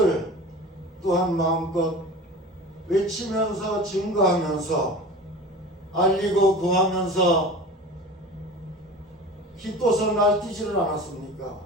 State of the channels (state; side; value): normal; both; correlation 0.36